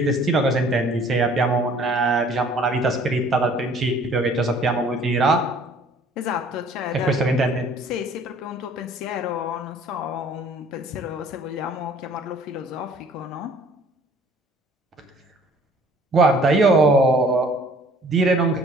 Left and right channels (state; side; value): normal; both; correlation 0.54